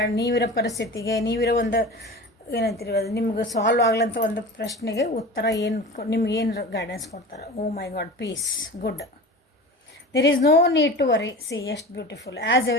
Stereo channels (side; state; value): both; normal; correlation 0.34